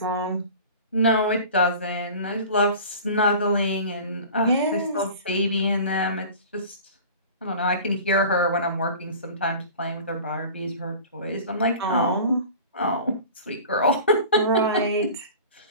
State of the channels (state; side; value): inverted; both; correlation -0.40